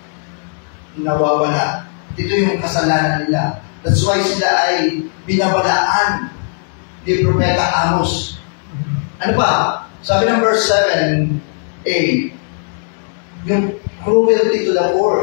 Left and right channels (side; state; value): right; silent; 58 dB below the other